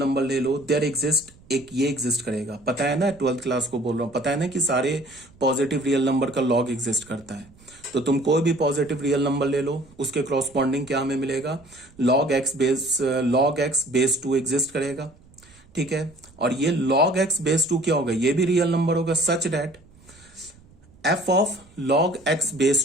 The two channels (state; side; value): noise; right; rumble, 27 dB below the sound